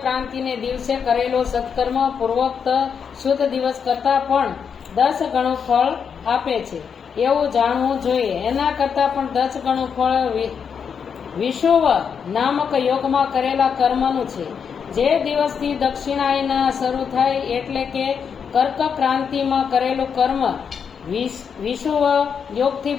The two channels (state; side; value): quieter; right; 6.8 dB